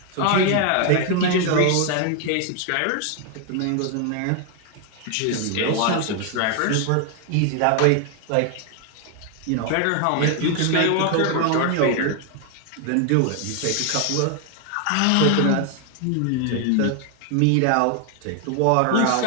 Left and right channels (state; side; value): different; both; correlation 0.00